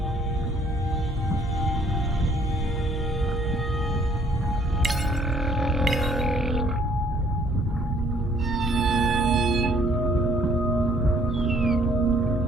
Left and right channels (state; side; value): normal; both; correlation 0.62